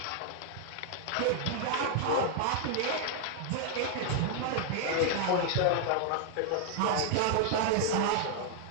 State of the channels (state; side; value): different; both; correlation 0.00